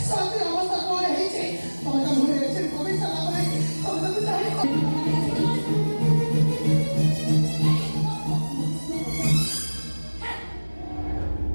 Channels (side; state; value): both; inverted; correlation -1.00